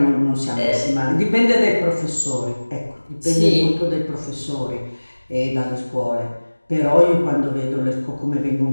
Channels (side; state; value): both; inverted; correlation -1.00